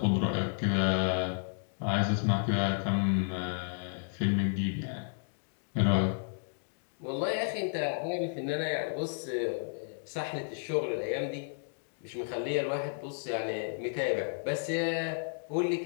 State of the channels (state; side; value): silent; right; digital silence